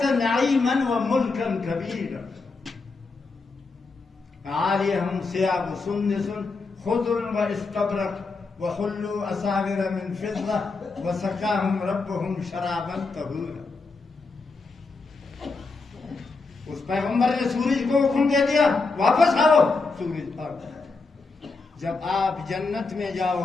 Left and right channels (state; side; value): quieter; right; 4.0 dB